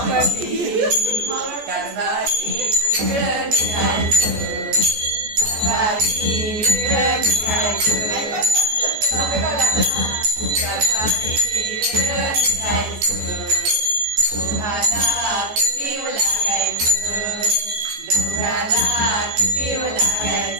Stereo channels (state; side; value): late; left; 14 ms